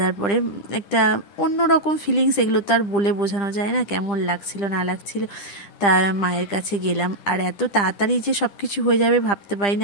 পরে। একটা অন্যরকম ফিলিংস, এগুলো তো আর বলে বোঝানো যায় না কেমন লাগছিল না লাগছিল। তা মায়ের কাছে গেলাম, আর এত তাড়াতাড়ি যে সব কিছু হয়ে যাবে ভাবতে পারি না।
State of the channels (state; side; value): late; right; 10 ms